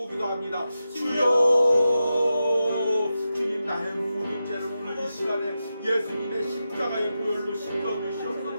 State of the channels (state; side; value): inverted; both; correlation -0.90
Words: 기도합니다. 주여, 주님 나의 모든 죄를 오늘 이 시간에 예수님의 십자가의 보혈로 씻겨